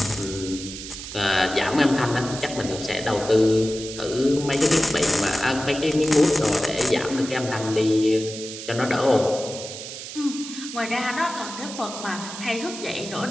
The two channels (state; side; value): noise; right; hiss, 10 dB below the sound